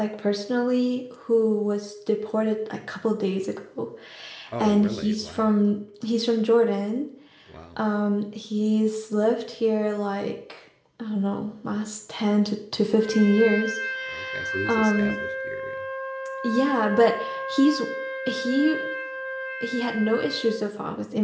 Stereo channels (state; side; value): identical; both; correlation 1.00